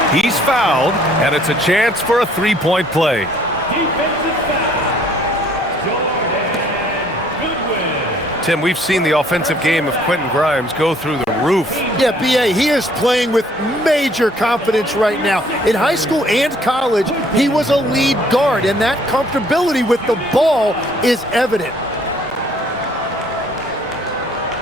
He's fouled, and it's a chance for a three-point play. Tim, we've seen the offensive game of Quentin Grimes go through the roof. Yeah, B.A., he is playing with major confidence right now. In high school and college, he was a lead guard, and that comfortability with the ball is evident.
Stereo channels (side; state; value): both; normal; correlation 0.60